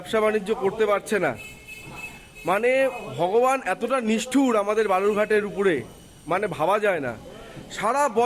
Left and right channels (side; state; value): both; identical; correlation 1.00